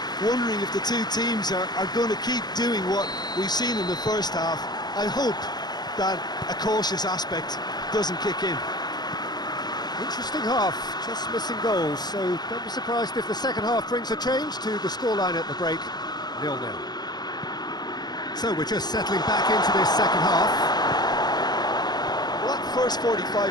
wondering if the two teams are going to keep doing what we've seen in the first half. I hope that a cautious aspect doesn't kick in. Interesting half, just missing goals, so don't be surprised if the second half brings a change to the scoreline at the break, 0-0. So we're just settling back into this second half. Well, that first 45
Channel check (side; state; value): right; late; 0.20 ms